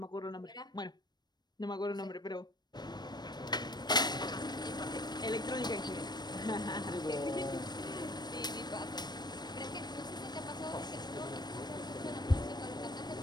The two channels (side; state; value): right; late; 0.20 ms